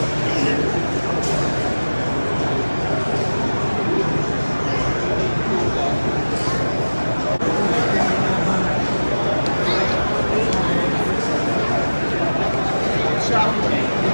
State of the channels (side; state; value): both; inverted; correlation -1.00